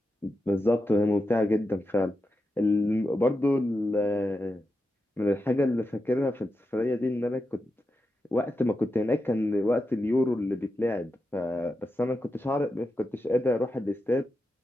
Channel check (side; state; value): both; normal; correlation 0.89